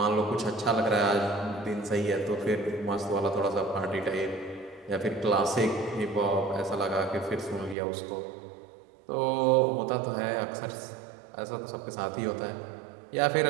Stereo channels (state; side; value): drops out; left; at 7.8 s